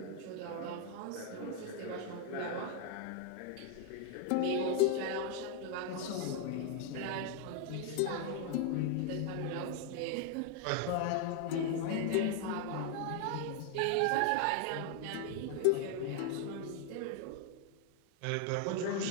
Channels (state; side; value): different; both; correlation 0.00